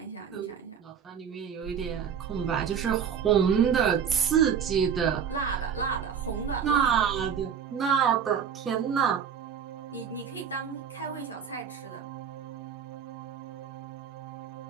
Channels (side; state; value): left; quieter; 7.6 dB